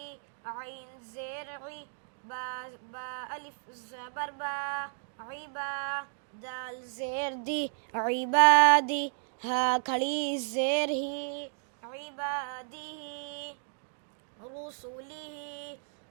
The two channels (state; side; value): silent; left; digital silence